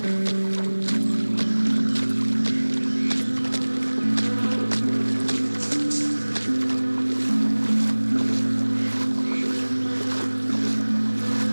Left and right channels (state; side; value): inverted; both; correlation -1.00